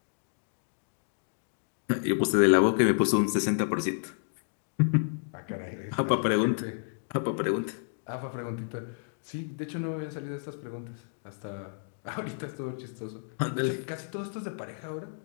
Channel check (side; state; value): right; silent; digital silence